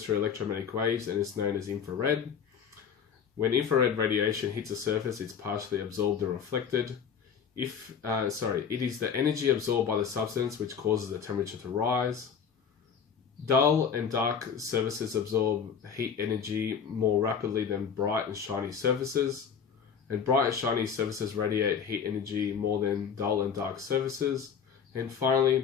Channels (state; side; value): quieter; right; 7.0 dB